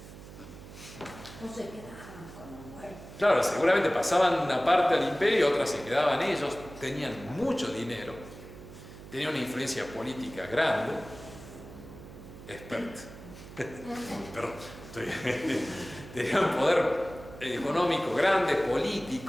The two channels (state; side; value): noise; right; hum, 16 dB below the sound